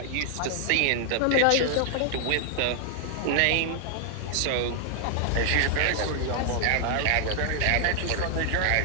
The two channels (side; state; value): both; different; correlation -0.01